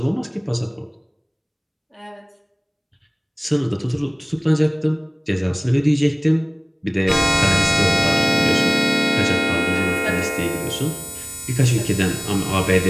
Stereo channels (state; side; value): identical; both; correlation 1.00